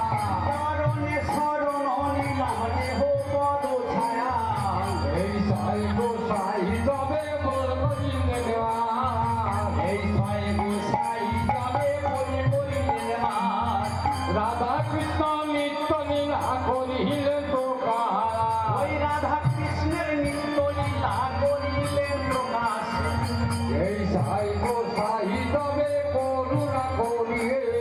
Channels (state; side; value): identical; both; correlation 1.00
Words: চরণে শরণ নিলাম দেহ পদ ছায়া এই ছয় গোসাই তবে মোর করিলে দেওয়া এই ছয় গোসাই যাবে বলে বলিলেন মার রাধা কৃষ্ণ নিত্য লীলা করিলেন তো কারা ওই রাধা কৃষ্ণের নিত্য লীলা করিলেন প্রকাশ এই সাই গোসাই তবে করুণা করিয়ে